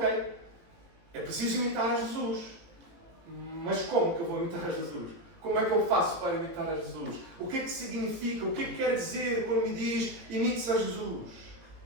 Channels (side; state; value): left; late; 17 ms